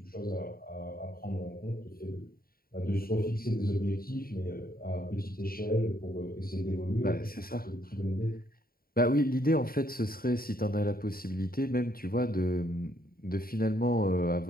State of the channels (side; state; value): right; late; 0.43 ms